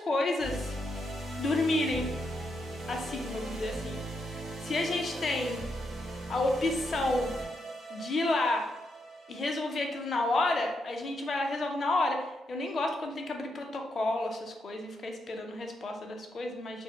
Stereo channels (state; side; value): normal; both; correlation 0.81